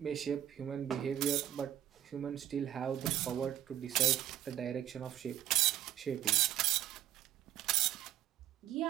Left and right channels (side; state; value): left; quieter; 11.9 dB